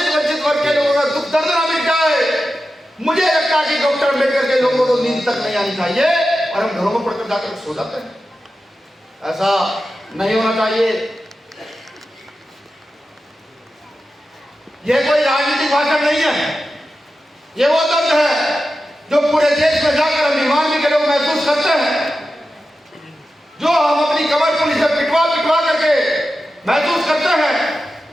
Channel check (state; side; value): normal; both; correlation 0.92